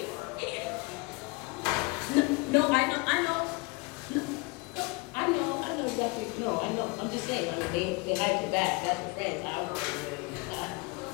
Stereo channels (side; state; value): right; quieter; 27.6 dB